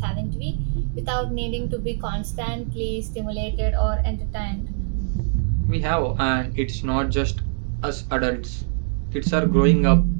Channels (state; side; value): silent; left; 63 dB below the other